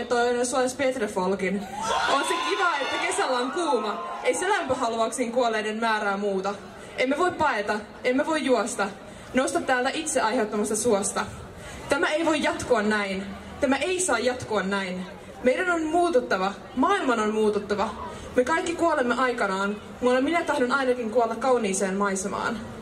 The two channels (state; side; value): identical; both; correlation 1.00